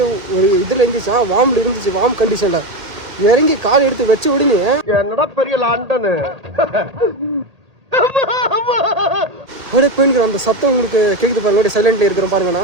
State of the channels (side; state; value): left; late; 1.9 ms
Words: ஒரு இதில் இருந்துச்சா வார்மில் இருந்துச்சு. வார்ம் கண்டிஷனில் இறங்கி கால் எடுத்து வச்ச உடனே என்னடா பெரிய லாண்டனு அப்படியே போயின்னுக்கிறோம். அந்த சத்தம் உங்களுக்கு கேட்குது பாருங்க. அப்படியே சைலண்ட்ல இருக்கிறோம்